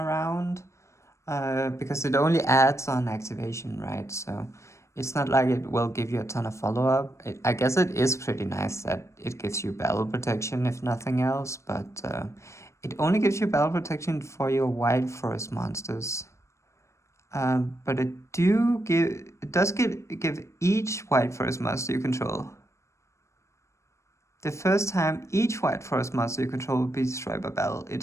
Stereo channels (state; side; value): late; right; 0.14 ms